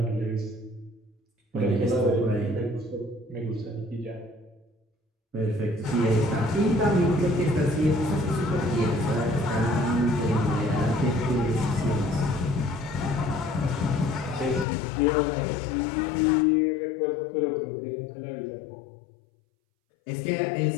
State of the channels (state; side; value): drops out; right; at 14.7 s